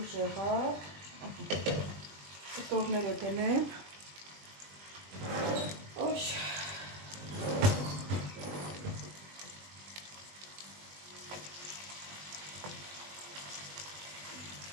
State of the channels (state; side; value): late; left; 20 ms